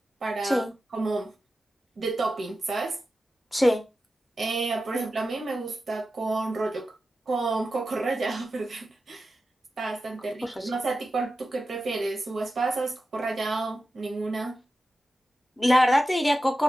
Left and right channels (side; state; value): both; normal; correlation 0.92